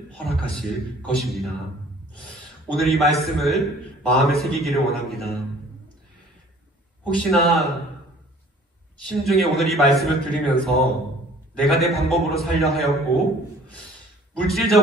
허락하실 것입니다. 오늘 이 말씀을 마음에 새기기를 원합니다. 혹시나 심중에 오늘 이 말씀을 들으면서 내가 내 방법으로 살려 하였고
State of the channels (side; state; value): both; normal; correlation 0.52